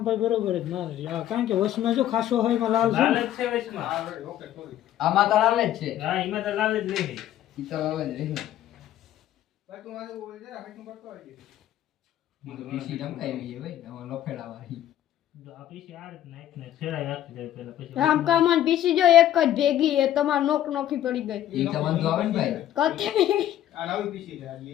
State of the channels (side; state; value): right; quieter; 12.1 dB